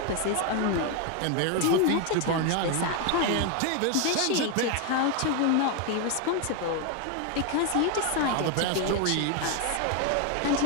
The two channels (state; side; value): different; both; correlation 0.01